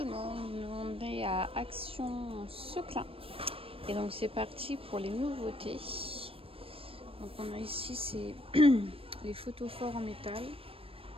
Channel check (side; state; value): left; late; 0.27 ms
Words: le monde, on est à Action Seclin et donc c'est parti pour les nouveautés. Donc on a ici c'est les photophores en métal,